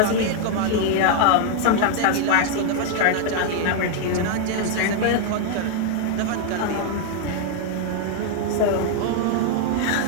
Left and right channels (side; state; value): both; different; correlation 0.00